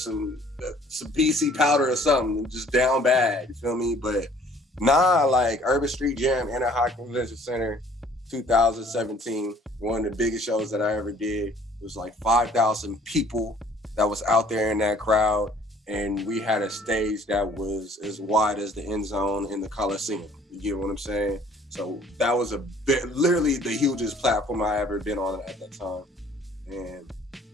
PC powder or something, just down bad, you feel me? But nah, like Urban Street Jam, Anaheim Convention Center, 2017, one of the biggest shows that I ever did. It was like 5,000 people that was out there in that crowd, and we had a stage that was as wide as the end zone in the Coliseum. You get what I'm saying? So that was literally the hugest platform I ever been on at that time.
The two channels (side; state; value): both; normal; correlation 0.56